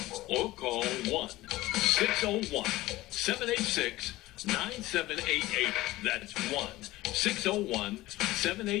Or call 1-601-786-9788. That's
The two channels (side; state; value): right; quieter; 17.9 dB